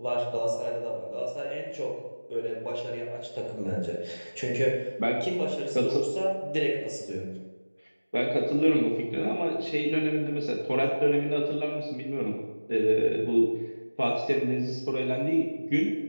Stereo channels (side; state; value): both; inverted; correlation -1.00